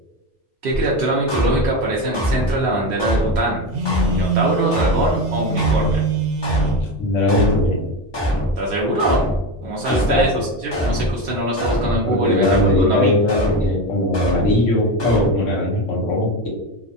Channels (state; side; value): normal; both; correlation 0.19